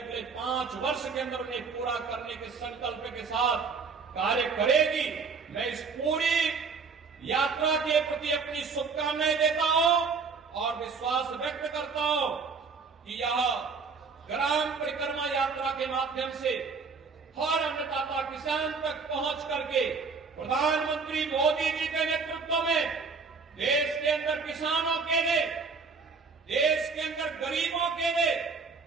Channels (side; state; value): left; quieter; 4.9 dB